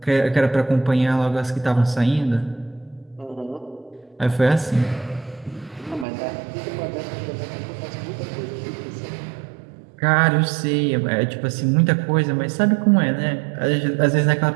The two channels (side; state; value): left; drops out; at 6.1 s